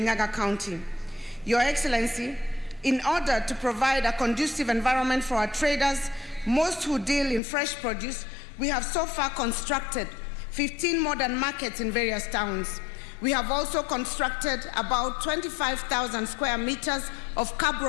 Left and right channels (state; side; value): drops out; right; at 7.4 s